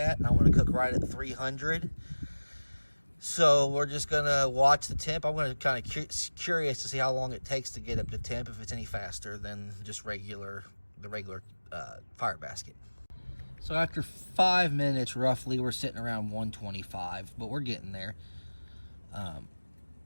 I want to cook right at 300. So we're just going to watch the temp. I'm going to kind of curious to see how long it takes to get up to temp, if it's any faster than just the regular fire basket. So after 5 minutes roughly, we're sitting around 125, but we're getting there.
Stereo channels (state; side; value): inverted; both; correlation -1.00